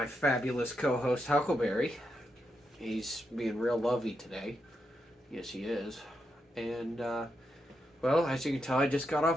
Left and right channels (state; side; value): normal; both; correlation 0.84